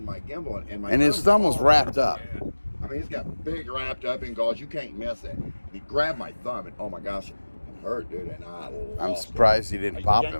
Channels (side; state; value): both; inverted; correlation -1.00